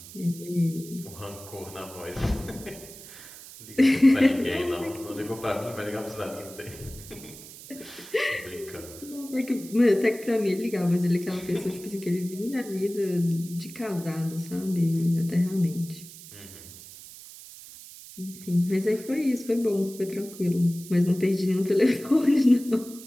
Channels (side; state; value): right; noise; hiss, 16 dB below the sound